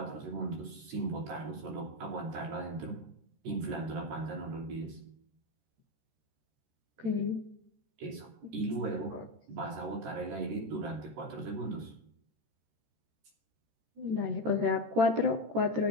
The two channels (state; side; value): late; left; 13 ms